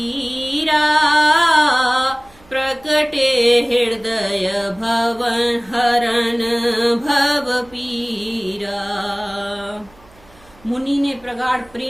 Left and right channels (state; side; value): noise; right; hum, 28 dB below the sound